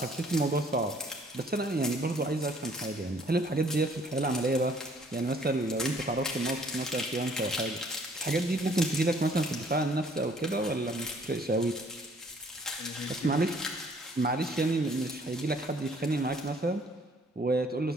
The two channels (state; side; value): normal; both; correlation 0.60